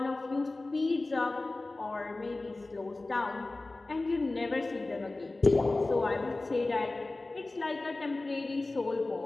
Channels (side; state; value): right; quieter; 3.1 dB